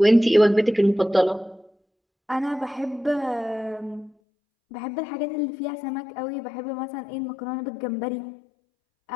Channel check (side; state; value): right; drops out; at 4.1 s